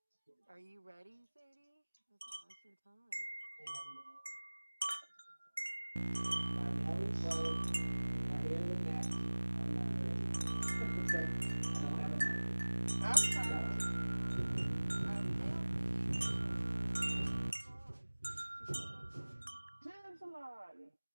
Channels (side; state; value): both; inverted; correlation -1.00